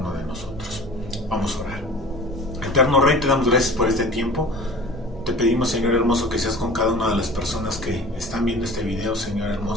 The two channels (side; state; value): both; normal; correlation 0.42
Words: de nosotros. Vamos a orar. Eterno Rey, te damos gracias por este tiempo. Te pedimos, Señor hermoso, que seas con cada una de las personas que están viendo este video, Señor